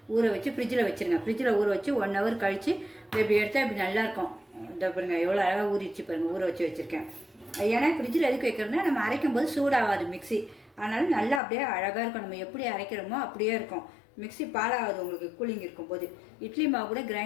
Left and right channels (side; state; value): right; drops out; at 11.4 s